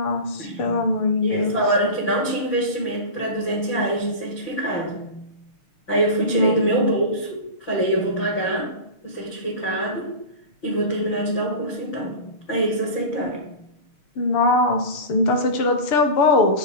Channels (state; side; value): late; right; 6.5 ms